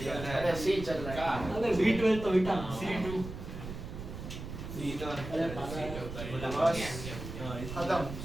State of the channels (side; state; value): right; noise; rumble, 9 dB below the sound